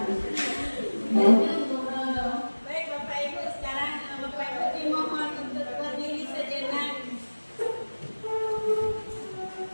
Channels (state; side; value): inverted; both; correlation -1.00